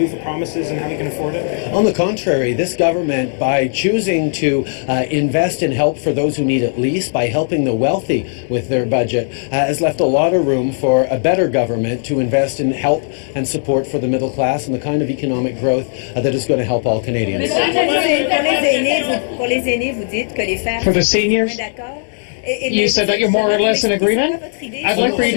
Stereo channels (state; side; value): silent; right; digital silence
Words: for promises and how you can afford it? On the contrary, this government, by choosing to invest in help for those who need it least, by helping the wealthy with their budget, has left a lot of room for a better government to invest in help and support for the middle class and the kind of economic growth that is going to help all Canadians. For the seniors, you said that you're more or less in agreement? I'd like for you